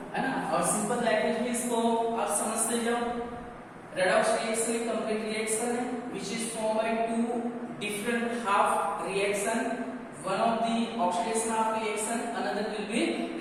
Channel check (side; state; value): both; identical; correlation 1.00